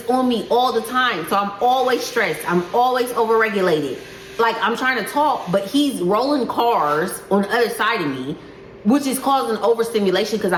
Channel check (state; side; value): identical; both; correlation 1.00